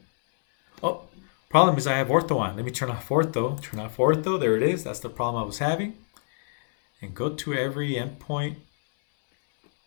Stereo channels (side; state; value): right; silent; 61 dB below the other